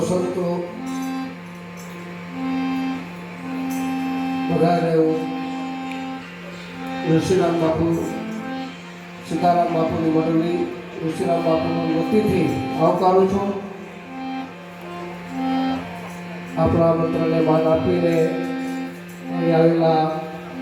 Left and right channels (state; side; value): identical; both; correlation 1.00